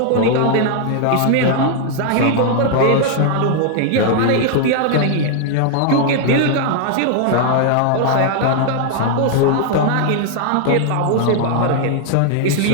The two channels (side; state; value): both; different; correlation 0.00